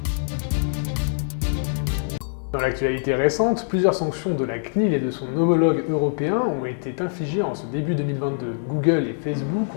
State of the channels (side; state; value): right; silent; digital silence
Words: Dans l'actualité récente, plusieurs sanctions de la CNIL et de son homologue européen ont été infligées en ce début 2022. Google et Facebook